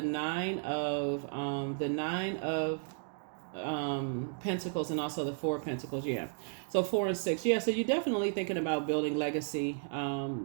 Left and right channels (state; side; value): silent; left; 55 dB below the other